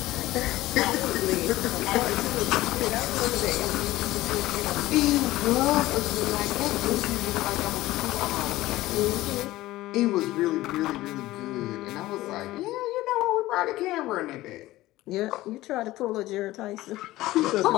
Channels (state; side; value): quieter; right; 17.1 dB